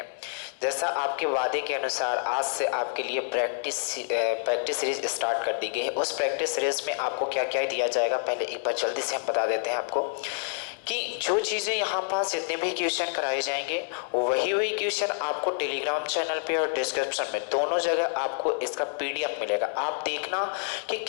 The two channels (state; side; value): silent; right; digital silence